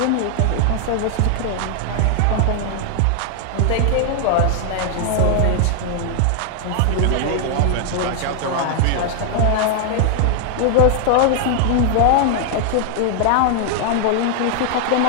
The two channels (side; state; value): both; different; correlation 0.00